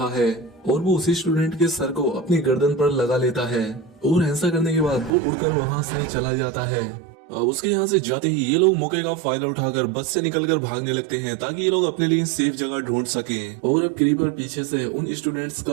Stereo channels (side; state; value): left; drops out; at 5.1 s